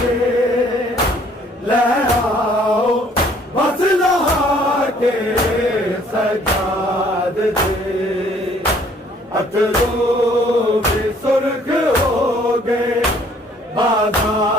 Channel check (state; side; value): normal; both; correlation 0.60